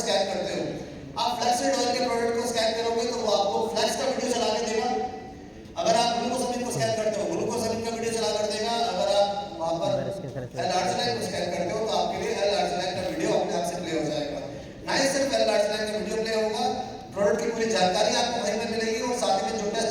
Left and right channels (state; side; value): identical; both; correlation 1.00